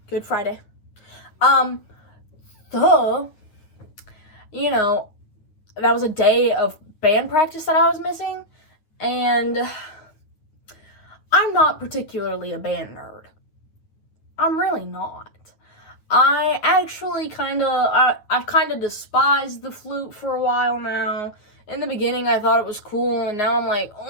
Good Friday. You know, that was a day of band practice that I was missing, and I'm not particularly a band nerd. I'm really not. I actually I've kind of despised the flute for a while now. In the beginning, I thought it was cool, and now I'm like,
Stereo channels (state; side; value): late; right; 9.5 ms